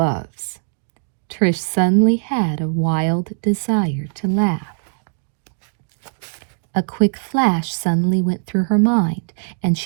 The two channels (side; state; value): left; silent; digital silence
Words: Trish suddenly had a wild desire to laugh. A quick flash suddenly went through her mind, and